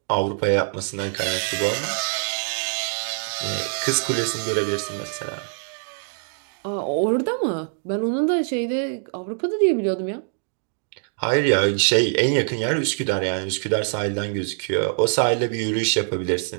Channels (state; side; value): silent; left; digital silence